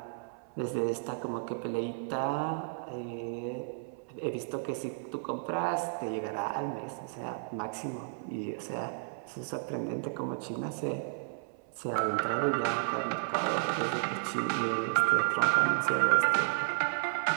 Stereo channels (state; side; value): silent; left; 56 dB below the other